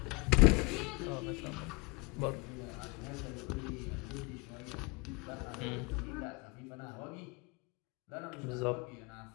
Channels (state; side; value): quieter; right; 28.5 dB